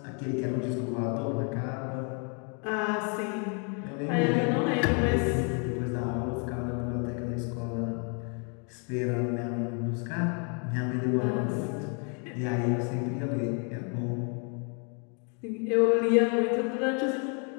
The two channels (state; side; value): quieter; right; 39.1 dB